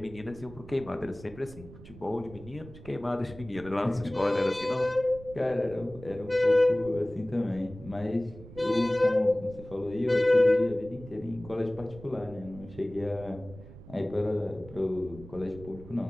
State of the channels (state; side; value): noise; right; rumble, 17 dB below the sound